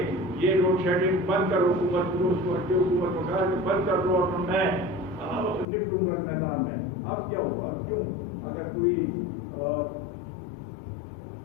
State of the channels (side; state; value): right; drops out; at 5.7 s